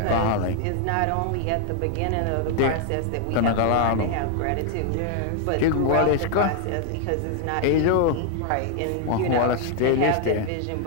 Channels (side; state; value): both; different; correlation 0.00